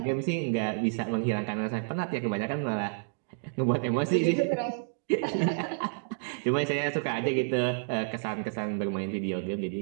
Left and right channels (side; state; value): left; silent; digital silence